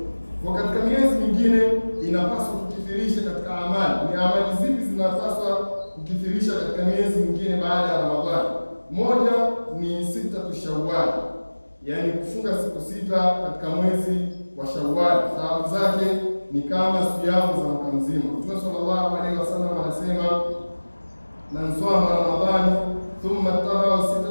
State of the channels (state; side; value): inverted; both; correlation -1.00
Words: Kwa katika miezi mingine inapaswa kukithirisha katika amali. Ni amali zipi zinapaswa kukithirisha katika miezi mingine baada ya Ramadhani? Moja ni sitatu Shawwal, yaani kufunga siku 6 katika mwezi wa Shawwal. Thawabu zake ni kama siyamu za mwaka mzima. Mtume sallallahu alaihi wasallam anasema, man sama Ramadhani thumma taba'a